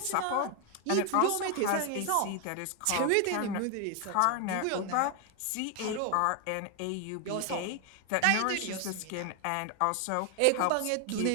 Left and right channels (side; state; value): both; different; correlation 0.00